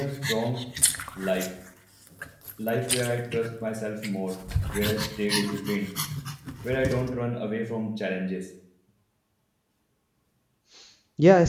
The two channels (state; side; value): identical; both; correlation 1.00